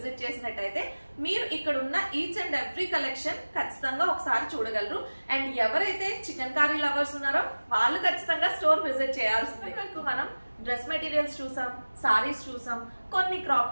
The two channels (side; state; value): both; inverted; correlation -1.00